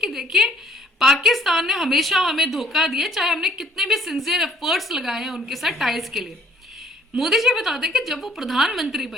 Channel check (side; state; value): both; normal; correlation 0.61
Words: कि देखिए पाकिस्तान ने हमेशा हमें धोखा दिया, चाहे हमने कितने भी सिंसियर एफर्ट्स लगाए हैं उनके साथ टाइज के लिए। मोदी जी बताते हैं कि जब वो प्रधानमंत्री